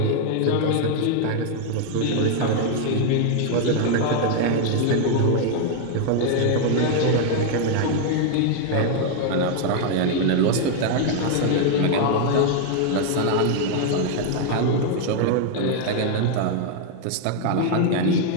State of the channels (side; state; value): both; different; correlation 0.00